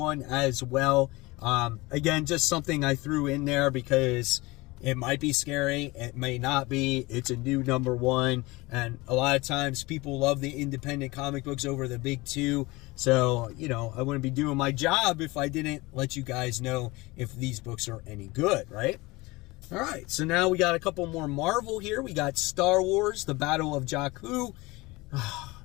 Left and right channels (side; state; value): right; quieter; 22.5 dB